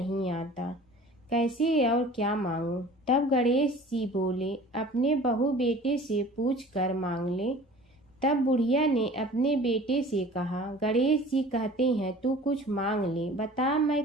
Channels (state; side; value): normal; both; correlation 0.45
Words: आता, कैसे और क्या मांगूं? तब गणेश जी बोले, अपने बहू बेटे से पूछ कर मांग ले। तब बुढ़िया ने अपने बेटे से कहा, गणेश जी कहते हैं तू कुछ मांग ले, बता मैं